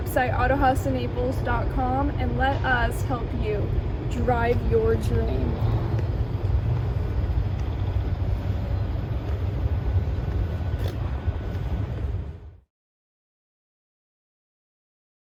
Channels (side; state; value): both; identical; correlation 1.00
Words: autohausinaples.com, and let us help you drive your dream.